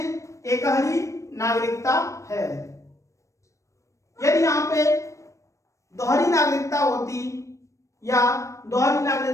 ही नागरिकता है। यदि यहाँ पे दोहरी नागरिकता होती या दोहरी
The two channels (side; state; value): right; late; 0.15 ms